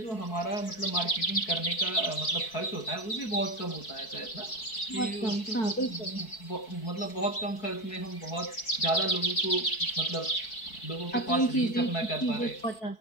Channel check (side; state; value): right; late; 4.6 ms